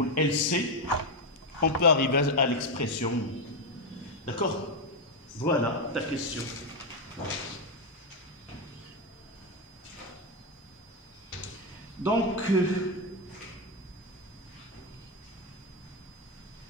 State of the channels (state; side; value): normal; both; correlation 0.06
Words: LC, on peut arriver à l'expression. D'accord? Voilà ta question. Donc,